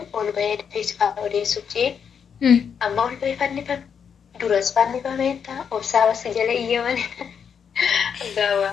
ol bahee feesifaa odeessuuf jee amma ol bahee fannifame duras fannifameetta obsaa basi jala iyyaman.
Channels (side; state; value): right; quieter; 7.2 dB